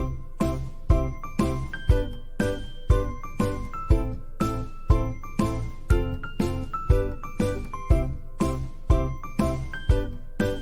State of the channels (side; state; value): both; identical; correlation 1.00